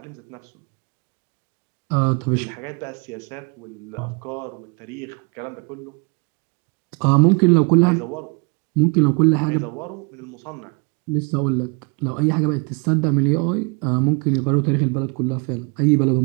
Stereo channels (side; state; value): left; quieter; 33.3 dB